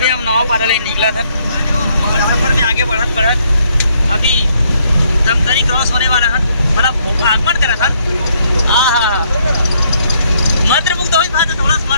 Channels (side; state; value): both; inverted; correlation -0.70